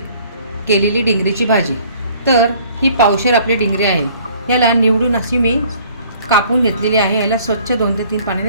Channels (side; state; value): both; inverted; correlation -0.56